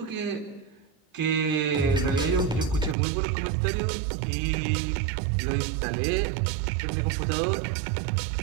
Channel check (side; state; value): left; drops out; at 3.0 s